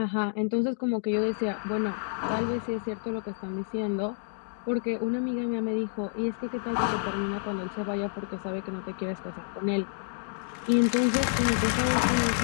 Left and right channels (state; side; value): silent; right; digital silence